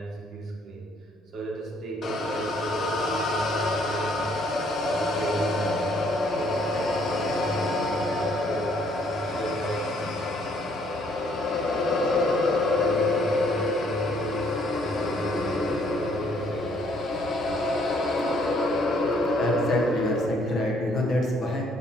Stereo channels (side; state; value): both; normal; correlation 0.65